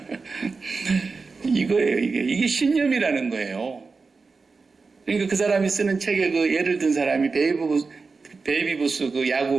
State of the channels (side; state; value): left; quieter; 4.4 dB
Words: 이거예요. 이게 신념이라는 거예요. 그러니까 그 사람이 쓰는 책에 그 예를 든 사람이 베이비부스 그